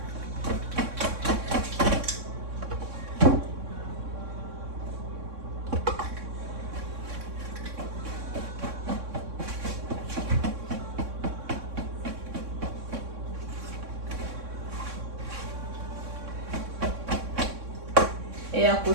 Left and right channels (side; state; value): left; late; 3.6 ms